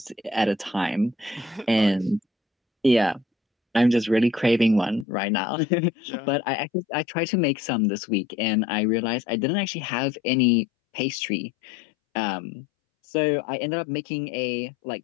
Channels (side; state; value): right; drops out; at 5.1 s